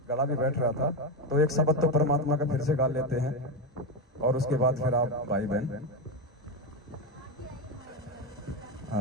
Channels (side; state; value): both; normal; correlation 0.13